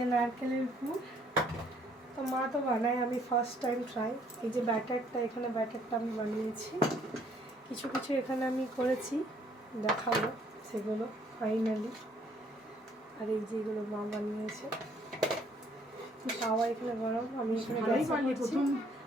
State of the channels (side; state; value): both; normal; correlation 0.64